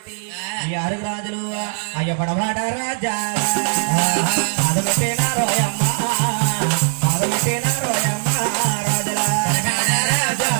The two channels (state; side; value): silent; left; 66 dB below the other